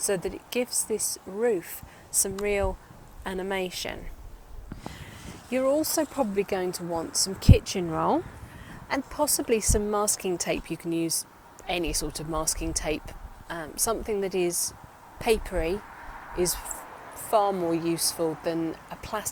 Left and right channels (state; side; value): identical; both; correlation 1.00